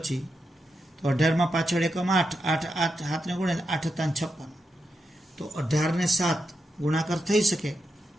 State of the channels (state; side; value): normal; both; correlation 0.86